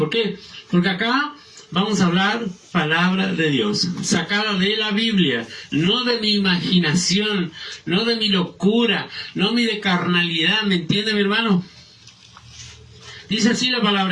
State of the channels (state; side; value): identical; both; correlation 1.00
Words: qué? Porque acá vamos a hablar palabra de Dios, sacada de la Biblia, no de mi imaginación, no de mi locura, no de carnalidad. ¿Me entiende, mi hermano? Dice así la